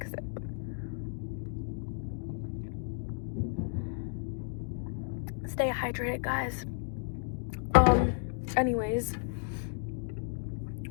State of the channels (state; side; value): silent; right; 56 dB below the other